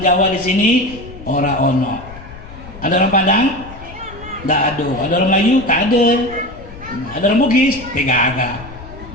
di sini, ora ono. Ada orang Padang? Tidak ada. Ada orang Melayu? Tak ada. Ada orang Bugis? Tidak ada.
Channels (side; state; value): left; noise; rumble, 16 dB below the sound